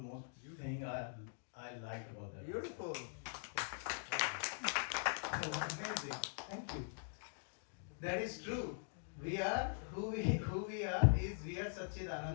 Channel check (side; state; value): right; silent; digital silence